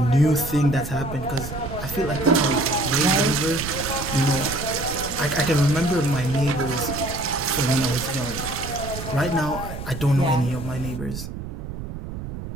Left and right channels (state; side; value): noise; right; rumble, 9 dB below the sound